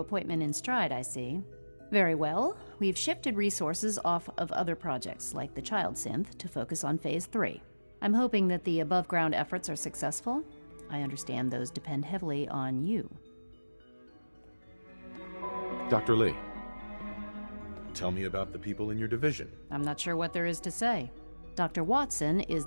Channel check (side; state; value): both; inverted; correlation -1.00